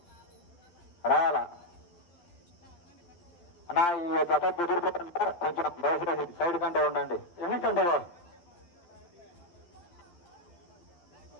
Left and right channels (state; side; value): late; right; 12 ms